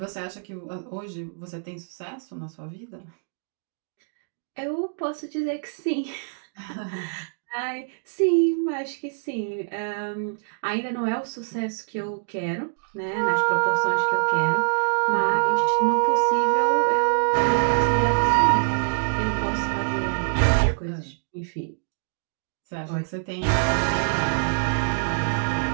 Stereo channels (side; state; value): left; silent; digital silence